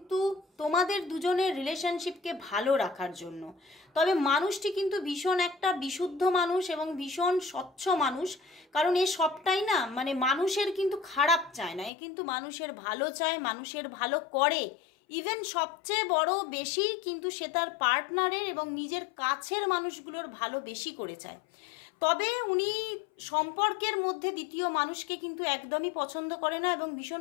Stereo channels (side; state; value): right; drops out; at 11.9 s